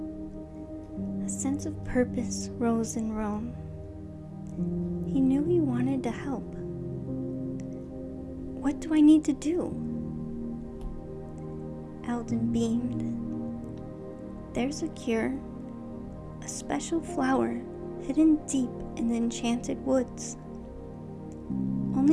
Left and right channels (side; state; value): both; identical; correlation 1.00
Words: A sense of purpose rose in Rome. He knew he wanted to help. "What do I need to do?" Alden beamed. "There's a cure, a special flower hidden deep in the enchanted woods.